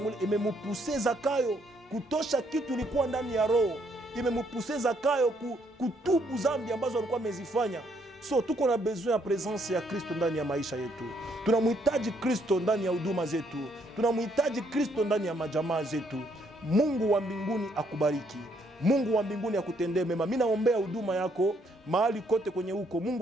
imemupuse Zakayo kutosha kitu ilikuwa ndani ya roho, imemupuse Zakayo kutubu zambi ambazo alikuwa amezifanya. So tuko na besoin ya presence ya Kristo ndani ya maisha yetu. Tunamhitaji Kristo ndani ya huduma zetu. Tunamhitaji Kristo ndani ya majamaa zetu. Mungu wa mbinguni akubariki. Mungu wa mbinguni akutendee mema. Mimi naombea huduma yako mahali kote kwenye huko.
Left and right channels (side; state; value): both; normal; correlation 0.70